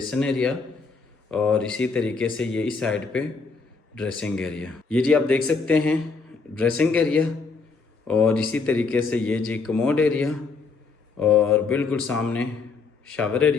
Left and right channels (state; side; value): quieter; right; 4.5 dB